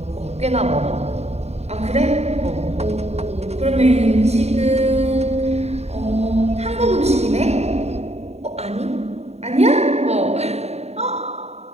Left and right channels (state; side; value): late; left; 0.31 ms